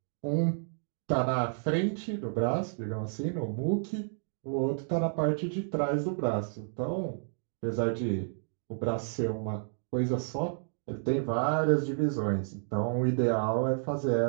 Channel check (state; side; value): silent; left; digital silence